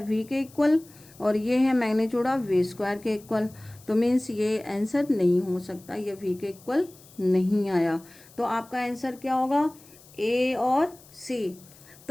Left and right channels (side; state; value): left; noise; hiss, 24 dB below the sound